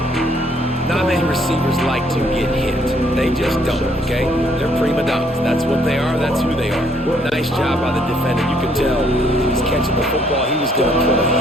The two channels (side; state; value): left; noise; hum, 24 dB below the sound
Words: Not many receivers like to get hit. They just don't, okay? They're prima donnas. That's what they are. That's who they are. Nice job by the defender. You could tell he was catching the football. He was going to put a